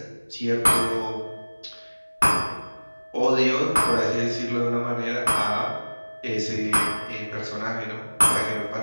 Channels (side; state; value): both; inverted; correlation -1.00